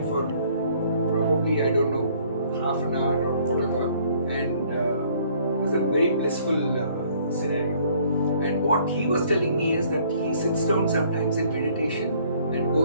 for probably, I don't know, half an hour or whatever, and it was a very blissful scenario. And what he was telling me is that he sits down sometimes in meditation and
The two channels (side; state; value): both; inverted; correlation -0.60